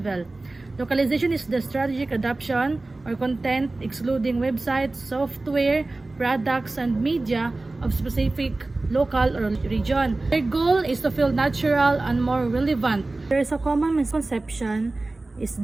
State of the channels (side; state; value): left; quieter; 3.1 dB